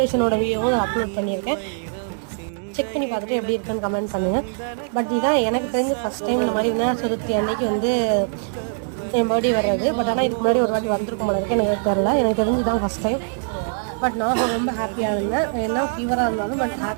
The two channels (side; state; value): left; silent; 64 dB below the other